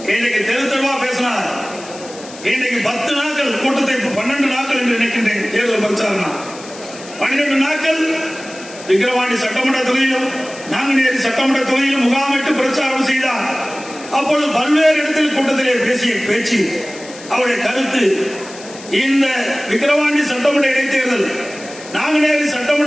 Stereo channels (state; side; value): noise; left; hiss, 17 dB below the sound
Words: இன்னைக்கு தெரு தெருவா பேசினார். இன்னைக்கு 10 நாட்கள் கூட்டத்தை 12 நாட்கள் என்று நினைக்கின்றேன். தேர்தல் பிரச்சாரம் 12 நாட்கள் விக்கிரவாண்டி சட்டமன்ற தொகுதியிலும் நாங்குநேரி சட்டமன்ற தொகுதியிலும் முகாமிட்டு பிரச்சாரம் செய்தார். அப்பொழுது பல்வேறு இடத்தில் கூட்டத்திலே பேசிய பேச்சு, அவருடைய கருத்து, இந்த விக்கிரவாண்டி சட்டமன்ற இடைத்தேர்தல், நாங்குநேரி